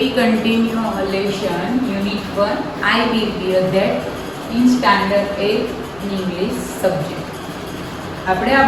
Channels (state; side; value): noise; left; rumble, 26 dB below the sound